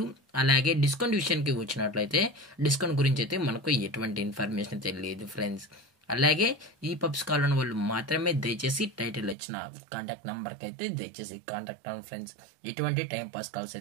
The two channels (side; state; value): left; drops out; at 9.3 s